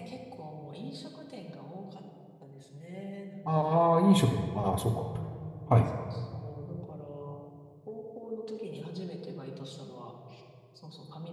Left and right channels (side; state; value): both; identical; correlation 1.00